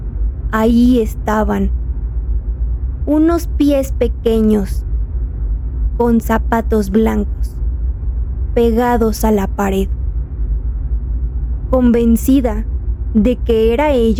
ahí estaban, unos pies pequeños, con zapatos blancos, pegados a la pared. Convencida de que era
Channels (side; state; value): both; identical; correlation 1.00